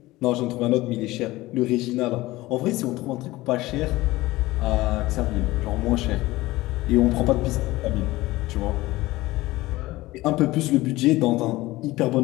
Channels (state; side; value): quieter; right; 18.8 dB